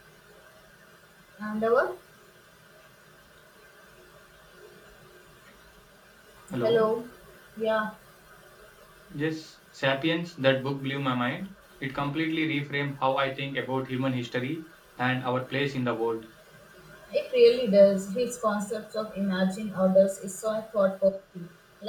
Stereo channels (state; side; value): identical; both; correlation 1.00